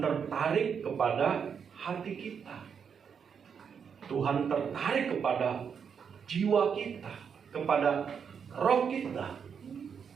tertarik kepada hati kita. Tuhan tertarik kepada jiwa kita, kepada roh kita.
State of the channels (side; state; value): left; quieter; 6.9 dB